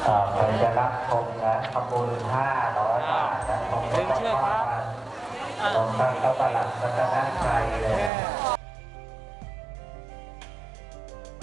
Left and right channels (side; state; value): left; drops out; at 8.1 s